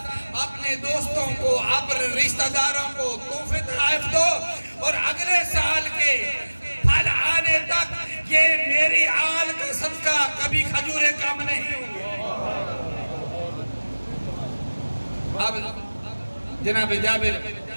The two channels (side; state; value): both; inverted; correlation -1.00